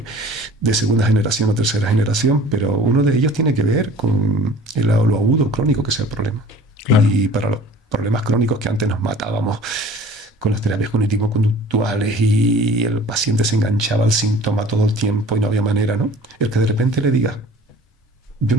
segunda generación o tercera generación, pero uno de ellos tiene que ver con lo agudo crónico que sea el problema. Claro. Y para los problemas crónicos que antes nos matábamos con las terapias cognitivo-conductuales y el paciente se enganchaba al síntoma todo el tiempo y no había manera, ¿no? El que de repente le diga, yo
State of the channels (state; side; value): normal; both; correlation 0.46